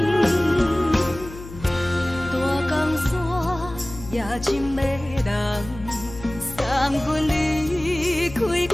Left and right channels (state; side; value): noise; left; hum, 14 dB below the sound